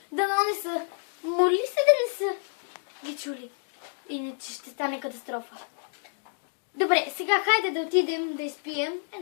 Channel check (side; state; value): right; silent; digital silence